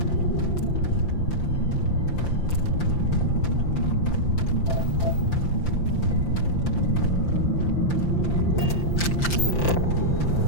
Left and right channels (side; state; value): right; late; 5.8 ms